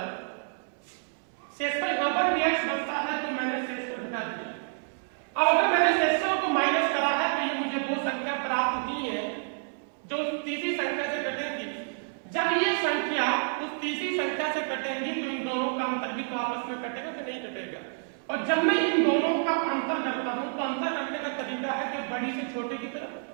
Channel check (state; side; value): silent; left; 59 dB below the other